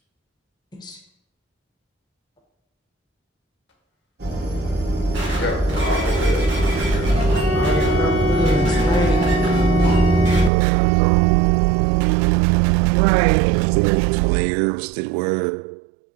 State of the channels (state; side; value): drops out; left; at 10.5 s